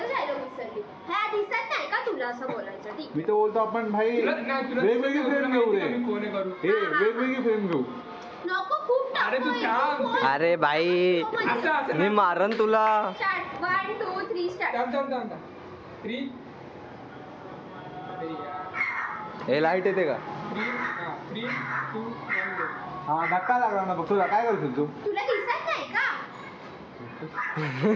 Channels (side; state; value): both; identical; correlation 1.00